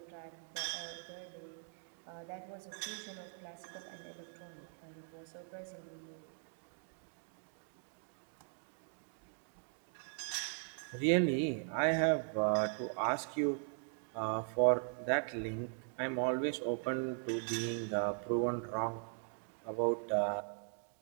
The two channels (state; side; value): silent; left; 51 dB below the other